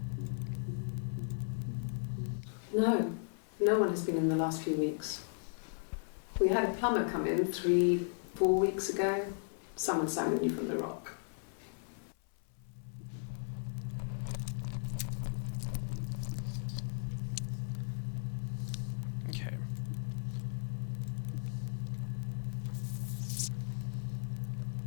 No one has been in the last few weeks. We had a plumber come in 3-4 weeks ago. Someone Simon knew from the Rock. Okay.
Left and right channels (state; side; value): silent; right; 54 dB below the other